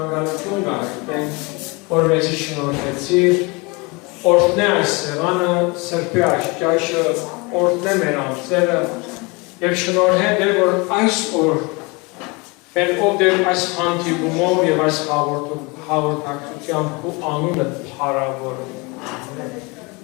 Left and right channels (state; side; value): quieter; right; 27.4 dB